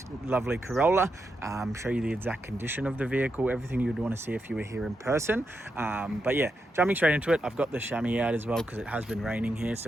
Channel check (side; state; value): both; normal; correlation 0.85